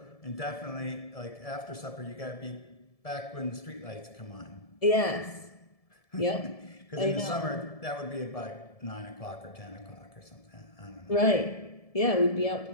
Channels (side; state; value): right; late; 1.7 ms